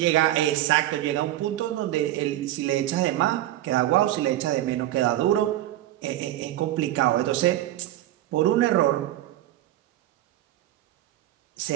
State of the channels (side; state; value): left; quieter; 14.2 dB